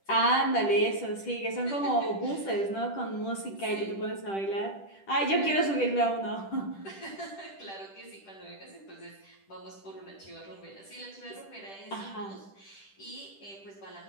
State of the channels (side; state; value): right; late; 10 ms